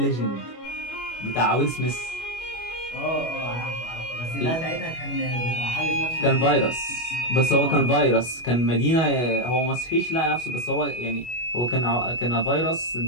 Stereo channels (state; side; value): late; right; 25 ms